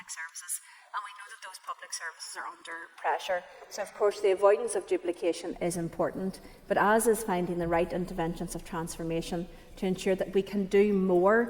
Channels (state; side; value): identical; both; correlation 1.00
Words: services, and we know that those public services are under pressure. So of course the avoidance of duplication is important, but as is finding the right interventions of transformation to ensure that we can do